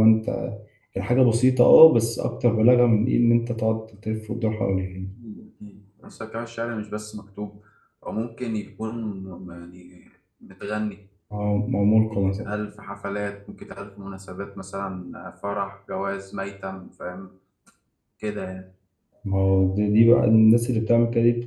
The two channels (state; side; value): identical; both; correlation 1.00